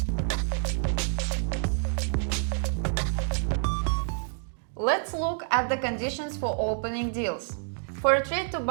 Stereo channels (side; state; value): left; silent; 59 dB below the other